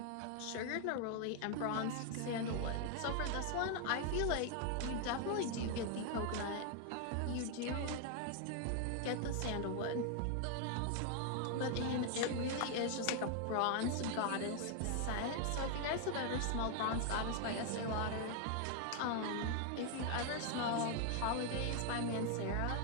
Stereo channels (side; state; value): both; different; correlation 0.00